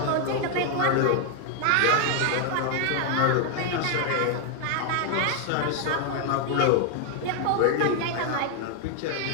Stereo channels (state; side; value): different; both; correlation 0.00